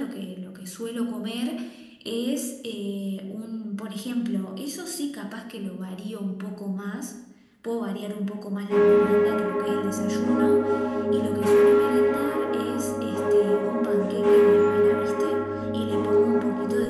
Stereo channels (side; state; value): both; identical; correlation 1.00